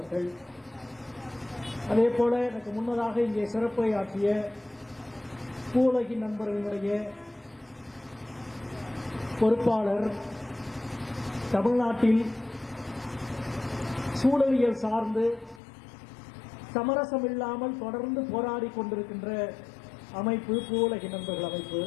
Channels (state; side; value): drops out; right; at 15.6 s